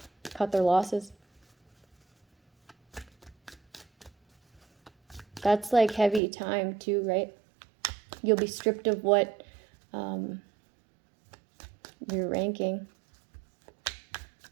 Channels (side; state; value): left; drops out; at 6.2 s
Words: cut their losses. That's like heavy time too, right? You'll be stripped of what you're ranking